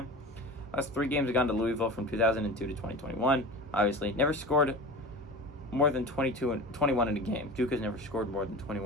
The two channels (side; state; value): both; normal; correlation 0.33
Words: Last 3 games have gone to Louisville from 2002 to 2021. Obviously, never scored more than 21 in a game. Duke has never scored more than